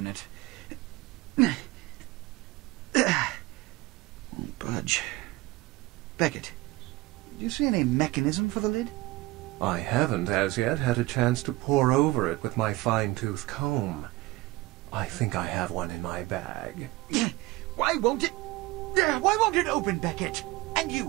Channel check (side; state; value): left; quieter; 19.7 dB